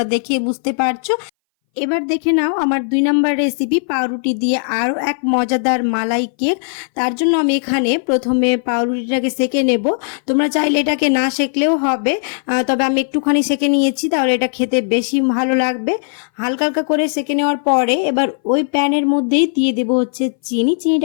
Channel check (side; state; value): right; silent; 62 dB below the other